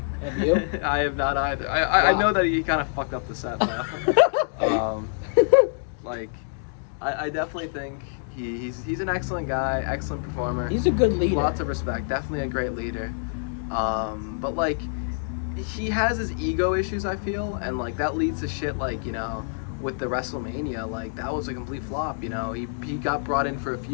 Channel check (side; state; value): right; silent; digital silence